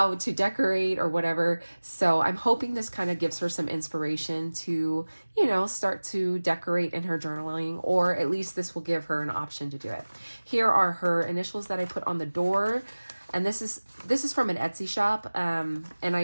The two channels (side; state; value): both; inverted; correlation -1.00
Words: to decorate or whatever. So I'm hoping this kind of gives her some inspiration to, start to decorate in her journaling, or at least this will give her an option to do it. Here are her initials that I put on the door. And this is from an Etsy shop. And